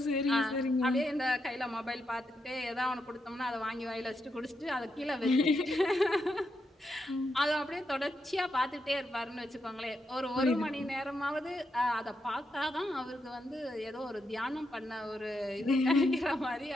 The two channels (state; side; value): normal; both; correlation 0.82